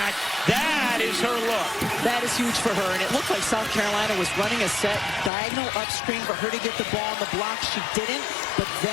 That is her look. That is huge for her, and it looked like South Carolina was running a set diagonal upstream for her to get the ball on the block. She didn't, but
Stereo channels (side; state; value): right; drops out; at 5.3 s